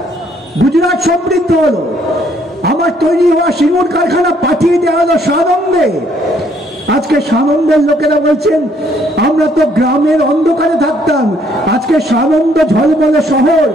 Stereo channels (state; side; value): normal; both; correlation 0.66